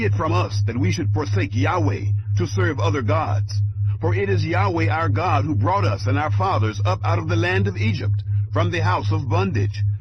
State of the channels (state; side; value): identical; both; correlation 1.00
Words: it from us that we should forsake Yahweh to serve other gods. For it is Yahweh our God who brought us and our fathers up out of the land of Egypt, from the house of bondage,